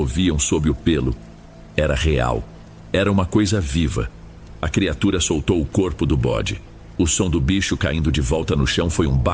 sob o pelo, era real. Era uma coisa viva. A criatura soltou o corpo do bode. O som do bicho caindo de volta no chão foi um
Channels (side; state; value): both; identical; correlation 1.00